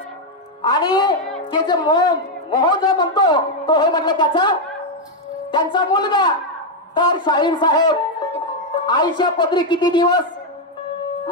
आणि ते जे मोह जो म्हणतो तो हे म्हटलं त्यांचा मुलगा. तर शाहीर साहेब आईच्या पदरी किती दिवस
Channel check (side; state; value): both; normal; correlation 0.02